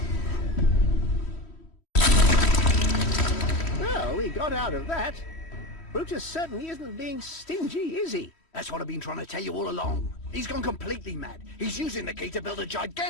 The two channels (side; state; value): right; late; 3.1 ms